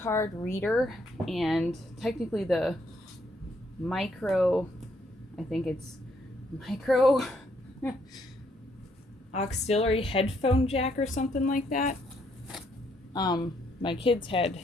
reader and technically the micro, I think it's micro auxiliary headphone jack or something like that. My kids had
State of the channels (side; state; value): both; normal; correlation 0.72